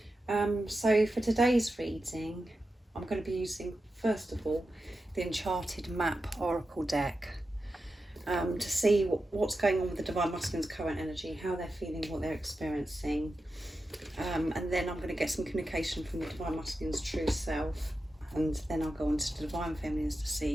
So for today's reading, I'm going to be using, first of all, the Enchanted Map Oracle deck to see what's going on with the Divine Masculine's current energy, how they're feeling, what they're experiencing. And then I'm going to get some communication from the Divine Masculine's true self. And then I'll go on to the Divine Feminines to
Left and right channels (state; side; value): normal; both; correlation 0.91